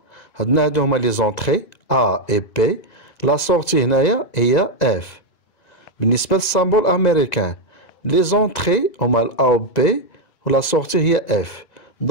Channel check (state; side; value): late; right; 2.0 ms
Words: عندنا هادو هما لي زونتري A et B، لا سورتي هنايا هي F. بالنسبة للسامبول أمريكان لي زونتري هما ال A و B ولا سورتي هي F.